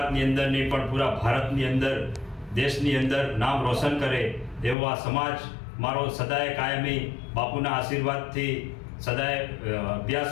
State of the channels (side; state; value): right; drops out; at 4.8 s